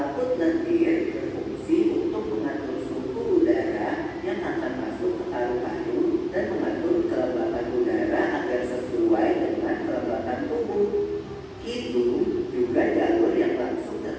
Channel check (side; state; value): both; identical; correlation 1.00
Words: lendir berfungsi untuk mengatur suhu udara yang akan masuk ke paru-paru dan mengatur kelembapan udara agar sesuai dengan kelembapan tubuh. Hidung juga jalur yang langsung